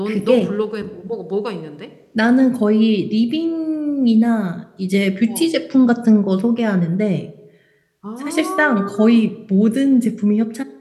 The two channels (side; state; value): both; identical; correlation 1.00